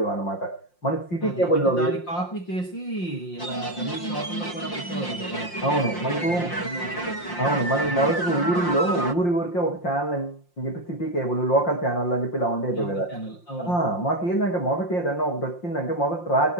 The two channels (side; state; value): right; late; 5.7 ms